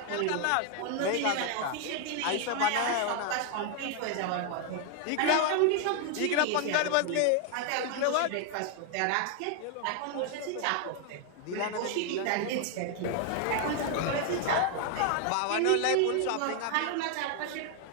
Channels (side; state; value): both; different; correlation 0.00